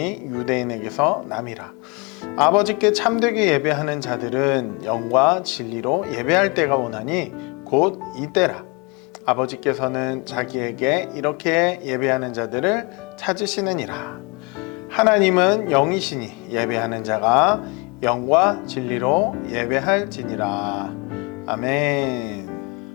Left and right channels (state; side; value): quieter; right; 29.0 dB